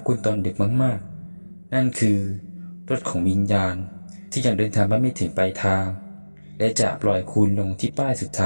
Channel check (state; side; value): inverted; both; correlation -1.00